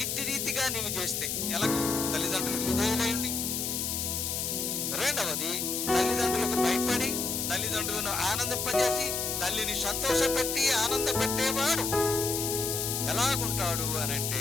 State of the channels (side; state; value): left; noise; hiss, 1 dB below the sound